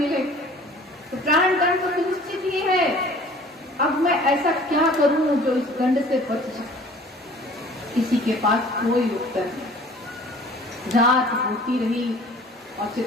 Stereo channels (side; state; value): both; normal; correlation 0.49